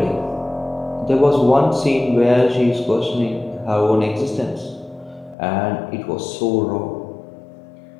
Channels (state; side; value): drops out; right; at 5.4 s